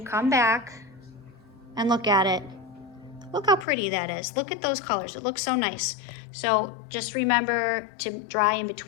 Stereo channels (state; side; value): drops out; right; at 3.7 s